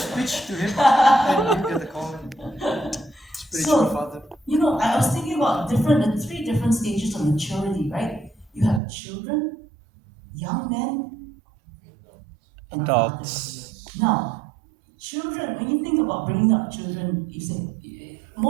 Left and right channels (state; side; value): drops out; left; at 8.8 s